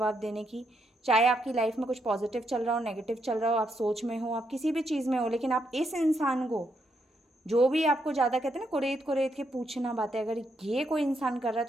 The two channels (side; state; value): both; normal; correlation 0.78